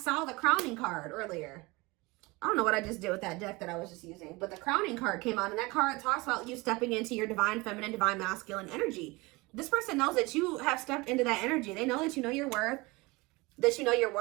the Crowning card earlier. I don't know what I just did with that deck that I was just using. But the Crowning card came out. And that card talks about you stepping into your divine feminine, divine masculine energy. This person knows that you have stepped into that energy. They know that you know your worth. That you know your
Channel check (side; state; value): left; quieter; 23.7 dB